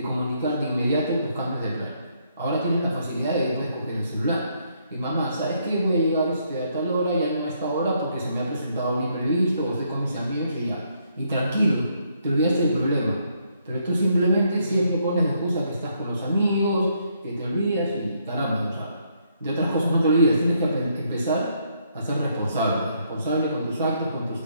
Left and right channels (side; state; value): both; inverted; correlation -0.72